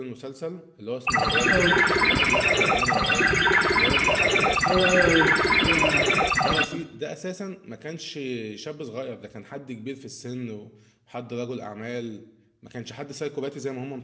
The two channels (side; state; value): both; identical; correlation 1.00